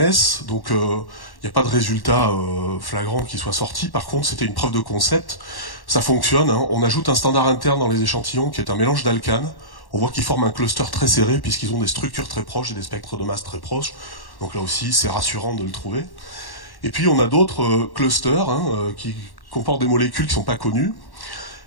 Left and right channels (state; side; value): late; right; 1.1 ms